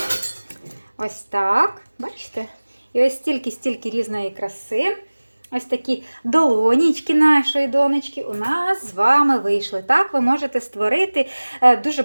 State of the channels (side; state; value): both; inverted; correlation -1.00